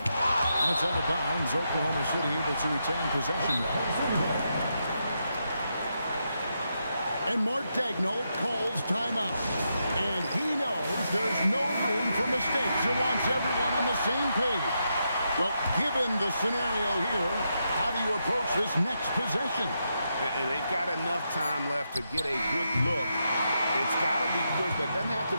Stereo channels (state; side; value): inverted; both; correlation -0.83